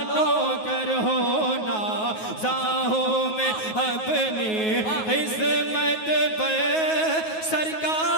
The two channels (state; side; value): late; right; 9.4 ms